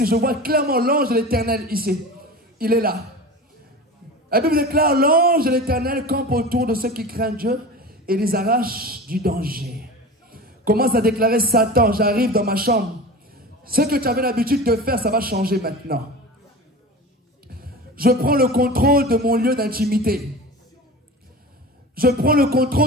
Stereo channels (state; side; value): normal; both; correlation 0.33